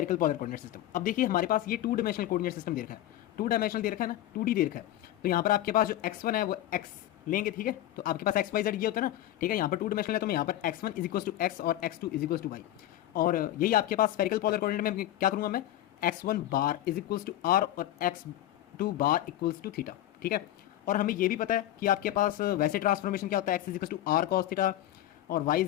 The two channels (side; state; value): right; quieter; 13.5 dB